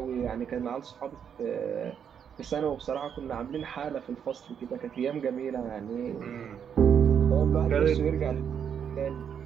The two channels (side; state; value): left; quieter; 7.9 dB